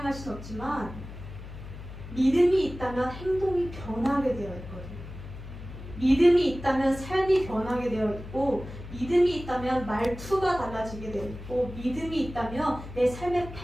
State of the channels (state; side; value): noise; left; hum, 12 dB below the sound